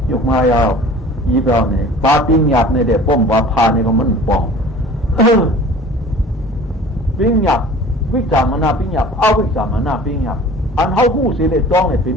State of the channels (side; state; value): both; normal; correlation 0.44